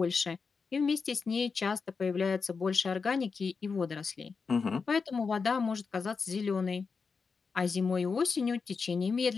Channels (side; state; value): right; quieter; 5.1 dB